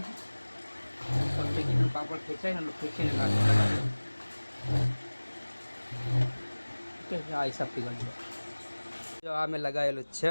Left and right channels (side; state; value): both; inverted; correlation -1.00